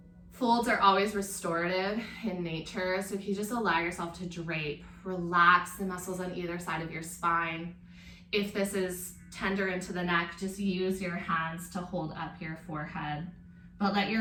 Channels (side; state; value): both; identical; correlation 1.00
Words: Folds are always restorative in nature, so if you just allow yourself to drape, relax the muscles on either side of your spine. If this is tender into the neck, just use your hands to hold up your forehead, but let